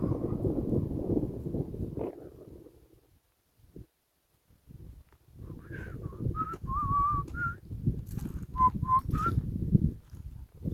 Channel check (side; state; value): both; identical; correlation 1.00